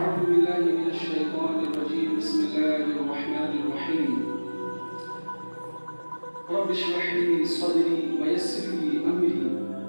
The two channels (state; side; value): inverted; both; correlation -1.00